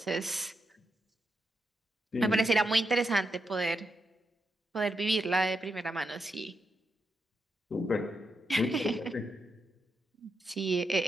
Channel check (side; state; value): both; normal; correlation 0.84